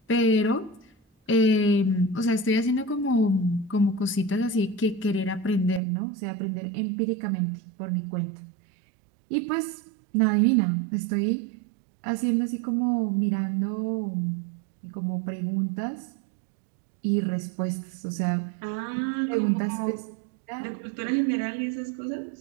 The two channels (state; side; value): drops out; left; at 5.8 s